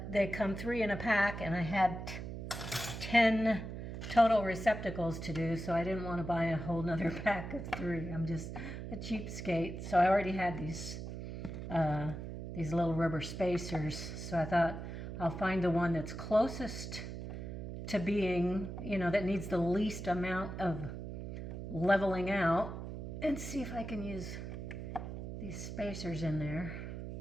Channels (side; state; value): right; noise; hum, 7 dB below the sound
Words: they come 3 in a pack, and I had 10 total receptacles to do, so I didn't want to buy a whole nother pack of 3. I'm just a cheapskate. So I already had these little rubber spacers, so I thought I'll find the one that's closest to being, you know, that needs the least amount of leveling out, and see if I can use these spacers in there.